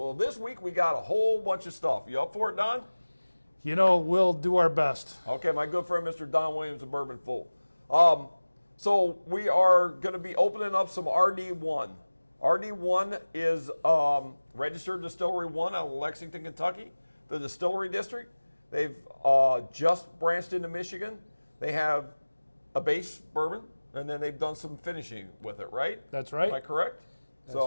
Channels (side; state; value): both; inverted; correlation -1.00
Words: this week we got a whole bunch of stuff. You up for it, Don? You know, we'll do our best. Okay, my good friend Mr. Don Williams of Bourbon Fool. So we are going to be opening up some RD1. RD1 is Registered Distillery 1 out of Lexington, Kentucky, the Distillery District. They've just branched into Michigan. They have a base bourbon, and then they've done some finishing with it, right? That's right. Am I correct?